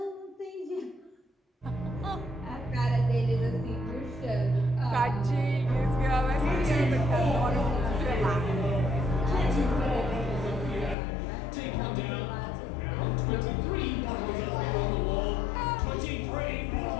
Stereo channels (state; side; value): drops out; right; at 11.0 s